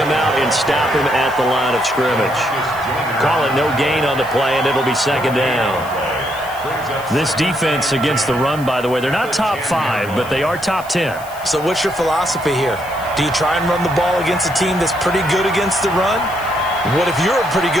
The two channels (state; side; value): noise; left; hiss, 19 dB below the sound